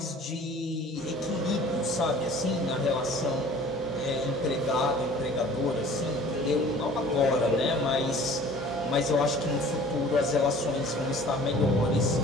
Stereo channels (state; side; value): normal; both; correlation 0.48